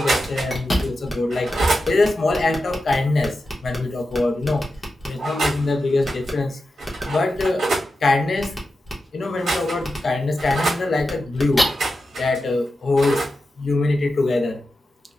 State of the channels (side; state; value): both; normal; correlation 0.91